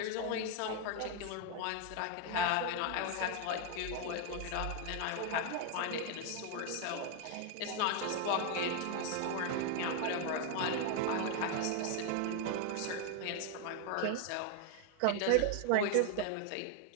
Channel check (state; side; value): different; both; correlation 0.00